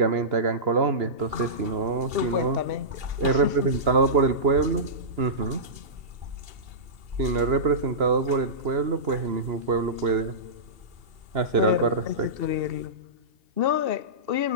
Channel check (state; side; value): late; left; 2.7 ms